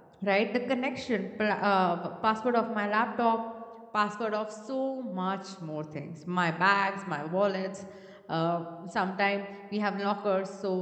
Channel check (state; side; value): identical; both; correlation 1.00